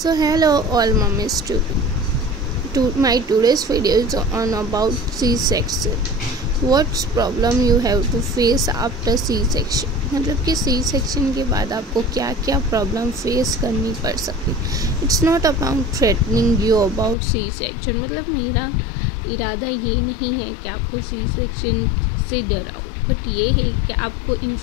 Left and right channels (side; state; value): right; drops out; at 17.2 s